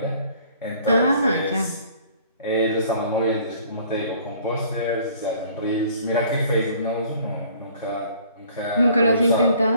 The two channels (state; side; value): inverted; both; correlation -0.55